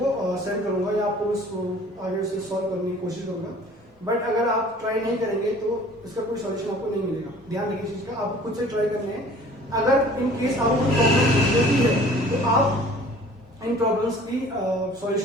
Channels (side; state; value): both; normal; correlation 0.50